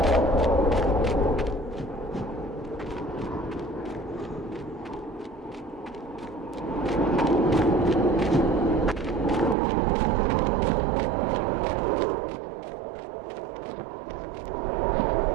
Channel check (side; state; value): left; drops out; at 9.6 s